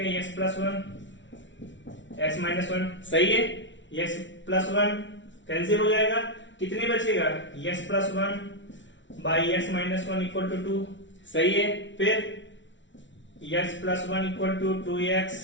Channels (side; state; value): right; late; 0.55 ms